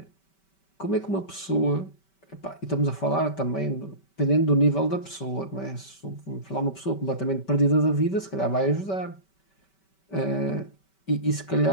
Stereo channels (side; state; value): right; late; 5.2 ms